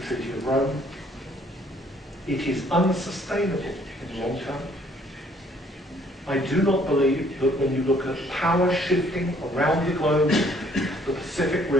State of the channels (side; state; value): both; normal; correlation 0.62